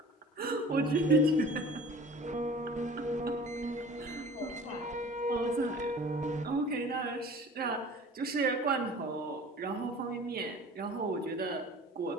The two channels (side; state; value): both; normal; correlation 0.44